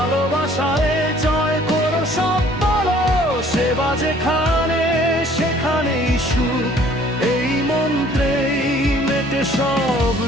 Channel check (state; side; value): normal; both; correlation 0.56